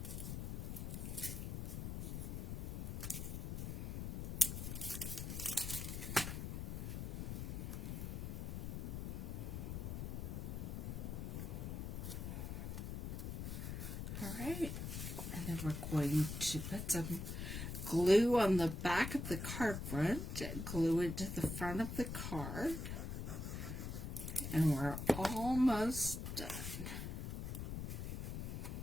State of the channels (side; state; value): left; noise; rumble, 4 dB below the sound